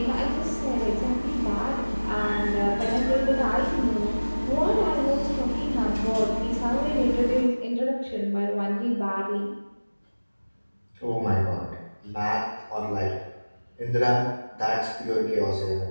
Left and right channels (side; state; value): both; inverted; correlation -1.00